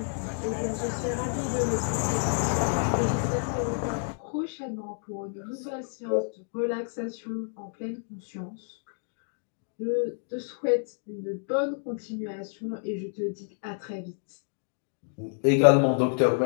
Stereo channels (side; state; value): right; silent; digital silence